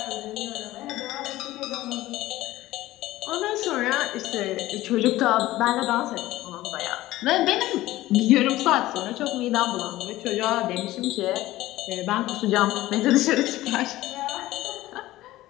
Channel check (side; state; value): right; quieter; 16.4 dB